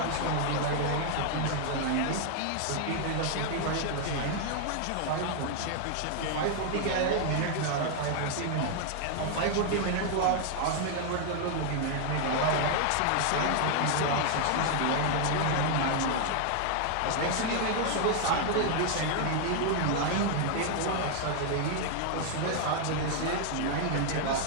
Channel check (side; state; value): both; different; correlation 0.00